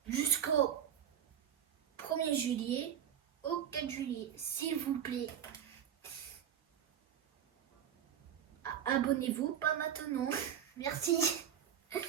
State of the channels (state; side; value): quieter; left; 9.3 dB